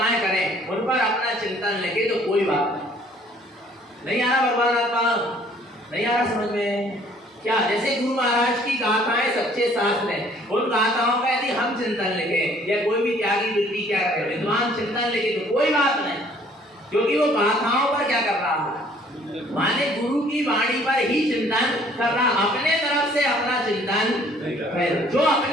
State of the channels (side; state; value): both; normal; correlation 0.58